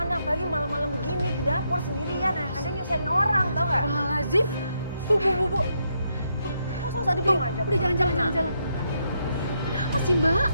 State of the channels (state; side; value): inverted; both; correlation -0.78